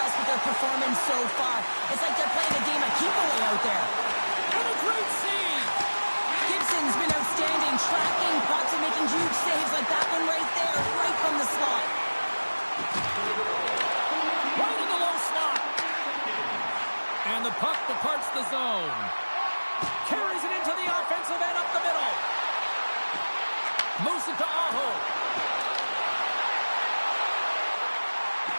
with their performance so far. It's like they're playing a game of keep-away out there. And a great save. Gibson's been outstanding, tracking pucks and making huge saves like that one right there, right from the slot. Right in the low slot. And the puck departs the zone. Carries it into the offensive end up the middle. Moves it to Aho.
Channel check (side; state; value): both; inverted; correlation -1.00